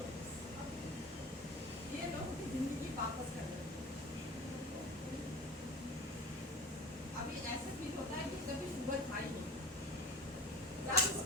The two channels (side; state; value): both; normal; correlation 0.38